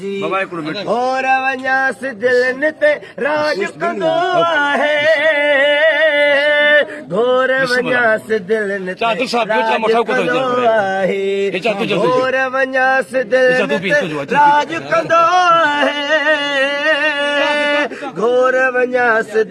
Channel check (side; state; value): both; identical; correlation 1.00